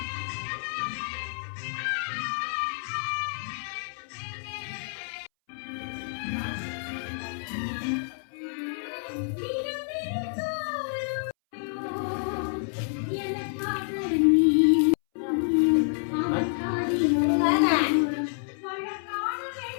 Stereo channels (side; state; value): right; silent; 59 dB below the other